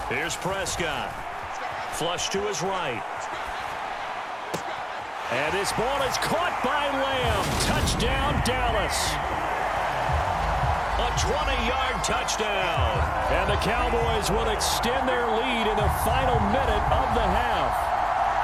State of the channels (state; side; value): identical; both; correlation 1.00